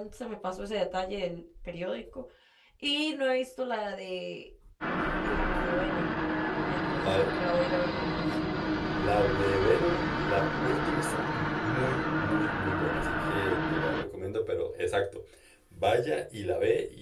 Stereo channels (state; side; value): identical; both; correlation 1.00